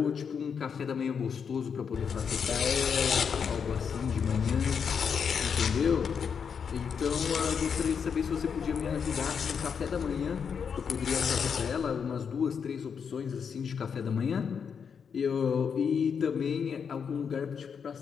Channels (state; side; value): quieter; right; 6.7 dB